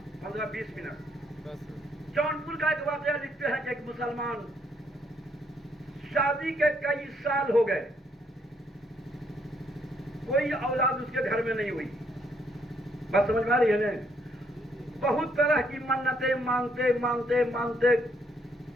15-20 منٹ. جونپور کا ایک واقعہ لکھتے ہیں کہ ایک مسلمان شادی کے کئی سال ہو گئے, کوئی اولاد اس کے گھر میں نہیں ہوئی. بس سمجھ میں آ رہی ہے نا, بہت طرح کی منتیں مانگتے مانگتے مانگتے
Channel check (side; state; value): both; normal; correlation 0.71